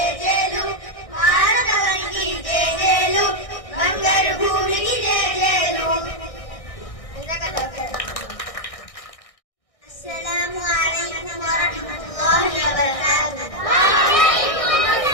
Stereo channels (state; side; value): late; right; 1.6 ms